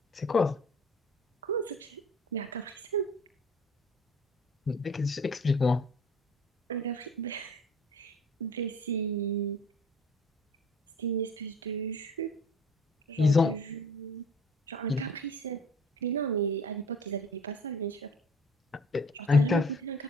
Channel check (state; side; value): normal; both; correlation 0.49